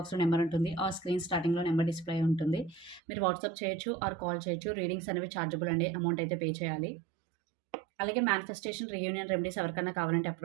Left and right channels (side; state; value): left; drops out; at 3.0 s